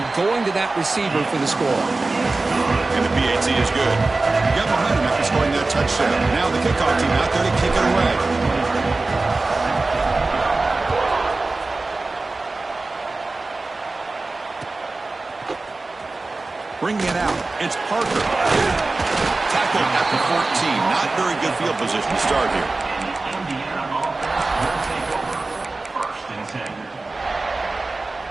going to that receiver for the score. And the PAT is good. Got behind him after scoring that touchdown. Now the kickoff team out there to kick it away. Bringing it out, it's Parker. Tackled at the 14. Not very good field position to start here.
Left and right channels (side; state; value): left; quieter; 3.4 dB